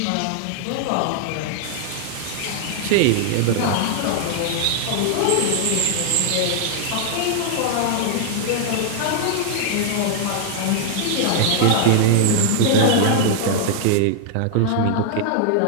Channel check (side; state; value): both; different; correlation 0.00